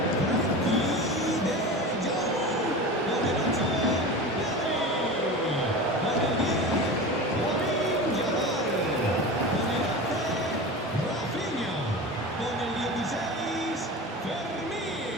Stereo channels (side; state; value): both; normal; correlation 0.30